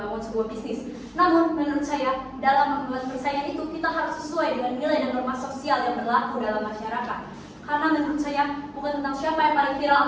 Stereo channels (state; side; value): identical; both; correlation 1.00